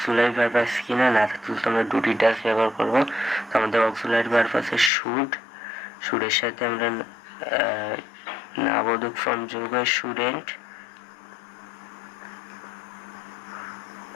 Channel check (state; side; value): drops out; right; at 4.9 s